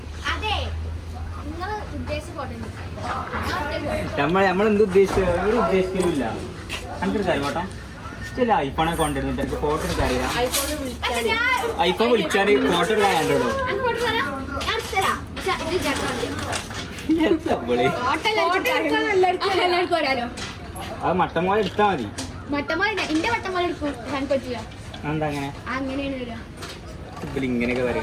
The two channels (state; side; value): identical; both; correlation 1.00